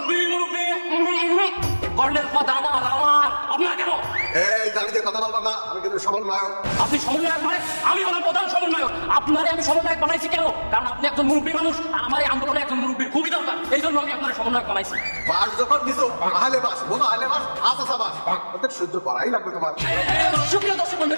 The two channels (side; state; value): both; inverted; correlation -1.00